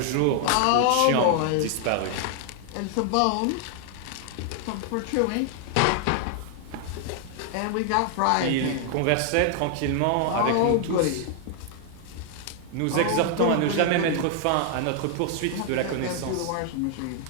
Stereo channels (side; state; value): both; different; correlation 0.00